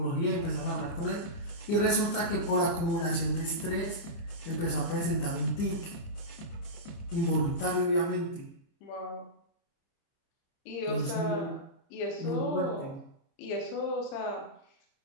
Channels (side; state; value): right; late; 29 ms